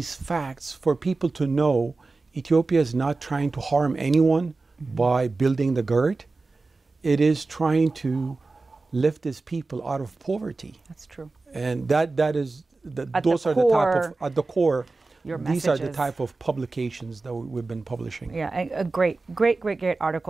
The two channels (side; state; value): left; quieter; 3.5 dB